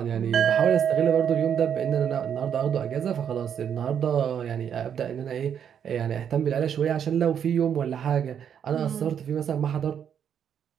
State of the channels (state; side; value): quieter; left; 8.4 dB